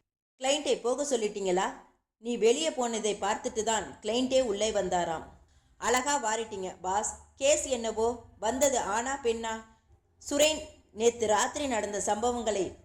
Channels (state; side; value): identical; both; correlation 1.00